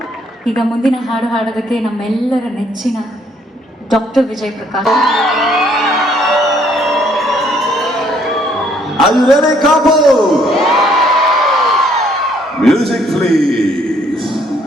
ಈಗ ಮುಂದಿನ ಹಾಡು ಹಾಡೋದಕ್ಕೆ ನಮ್ಮೆಲ್ಲರ ನೆಚ್ಚಿನ doctor Vijay Prakash. Are you ready, couple? Music, please.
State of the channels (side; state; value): both; normal; correlation 0.65